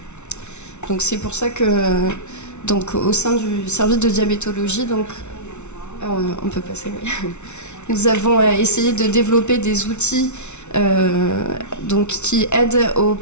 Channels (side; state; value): right; late; 0.82 ms